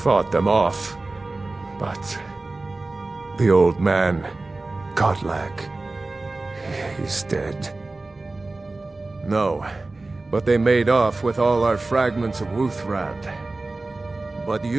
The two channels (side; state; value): left; quieter; 3.2 dB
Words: them off, but the old man, Godlak, he's dead. No, but they made off with all our fragments of Wuthrad. But